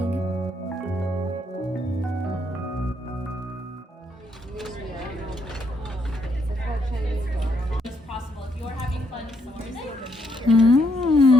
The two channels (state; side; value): normal; both; correlation 0.75